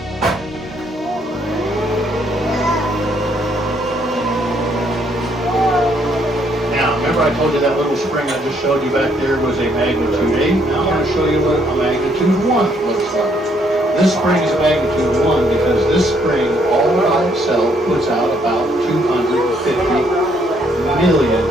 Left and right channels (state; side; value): normal; both; correlation 0.69